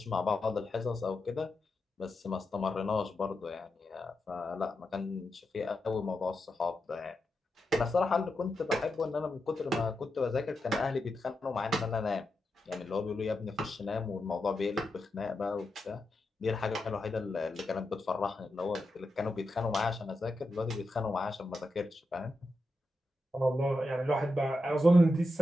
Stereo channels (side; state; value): both; normal; correlation 0.88